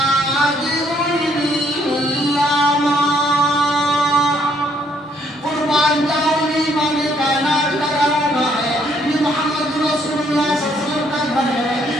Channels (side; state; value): both; normal; correlation 0.68